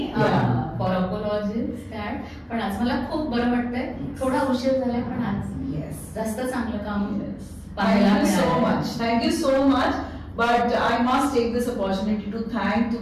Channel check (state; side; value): identical; both; correlation 1.00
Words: फॉर अपॉलॉजीज दॅट. पण आज मला खूप बरं वाटतंय, थोडा उशीर झालाय पण आज जास्त चांगलं काम पाहायला मिळालं. Thank you so much. But I must take this opportunity to thank,